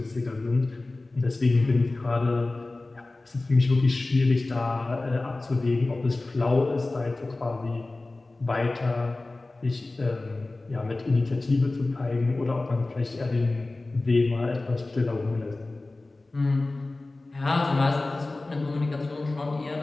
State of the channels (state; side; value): quieter; right; 3.1 dB